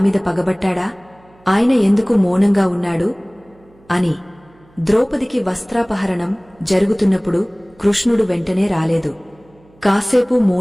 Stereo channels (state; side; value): noise; right; hum, 30 dB below the sound